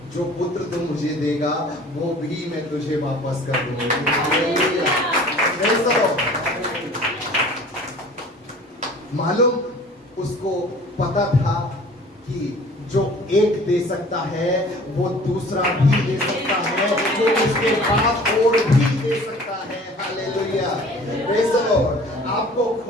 जो पुत्र तुम मुझे देगा वो भी मैं तुझे वापस कर दूंगी, मालूम उसको पता था कि जो एक दे सकता है वो दूसरा भी दे सकता है, वो उसके बाद और भी दे सकता है, हालेलुया, प्रेज़ द लॉर्ड। आपको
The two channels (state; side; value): normal; both; correlation 0.47